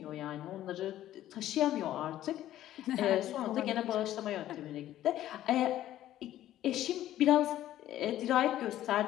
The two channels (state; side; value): quieter; right; 13.1 dB